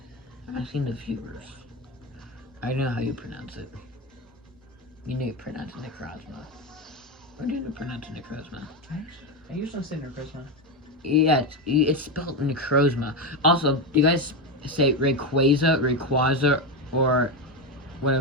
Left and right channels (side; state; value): both; normal; correlation 0.13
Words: I'm asking the viewers. I know how you pronounce it. You need to pronounce it Necrozma. Or do you pronounce it Necrozma? I usually say Necrozma. Yeah, it's spelled Necrozma. Also, do you guys say Rayquaza, or